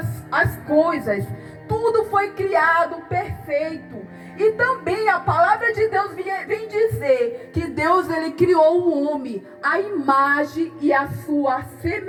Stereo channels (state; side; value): identical; both; correlation 1.00